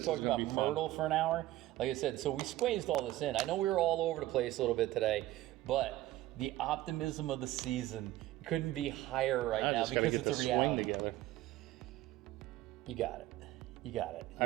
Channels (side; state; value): left; quieter; 15.7 dB